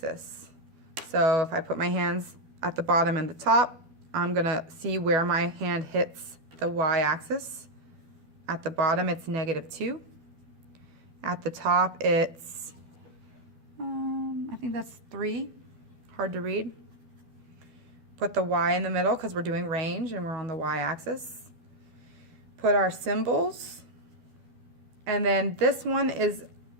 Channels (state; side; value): late; left; 12 ms